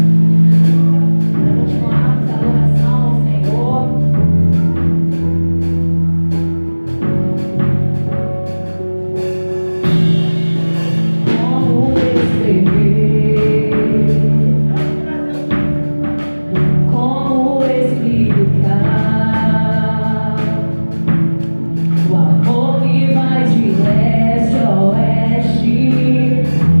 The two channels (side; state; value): both; inverted; correlation -1.00